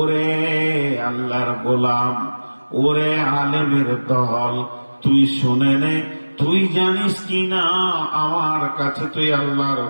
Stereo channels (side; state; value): both; inverted; correlation -1.00